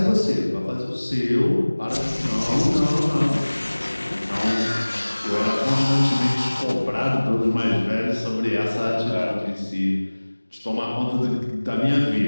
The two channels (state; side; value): inverted; both; correlation -1.00